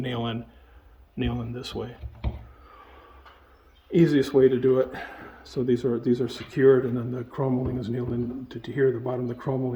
in this way. Easiest way to do it. So these are secured, and then the crown molding is nailed in to here. The bottom of the crown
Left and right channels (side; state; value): both; identical; correlation 1.00